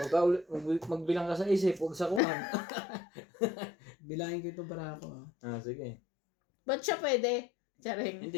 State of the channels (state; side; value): drops out; right; at 2.2 s